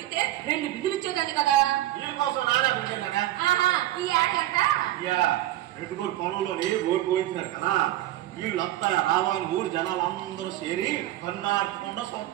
2 బిందులు ఇచ్చేదాన్ని కదా. నీళ్ళ కోసం నానే ఆహా ఈ ఆడగంట రెడ్డిగోడు పొలంలోని ఓటు పోయించినారు కదా. వీళ్ళంతా రావాలి ఊరు జనాలు అందరూ చేరి కన్నార్చకుండా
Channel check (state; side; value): quieter; left; 14.6 dB